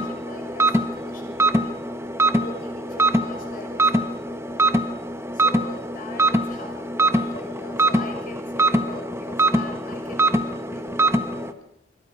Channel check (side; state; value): both; normal; correlation 0.55